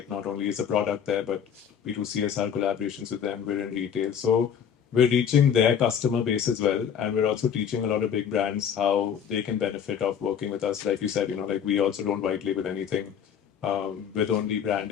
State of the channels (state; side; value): quieter; right; 8.1 dB